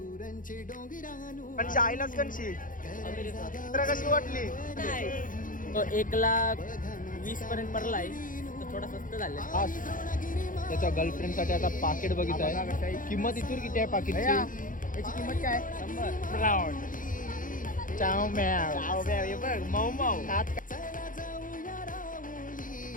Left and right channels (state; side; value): late; right; 0.39 ms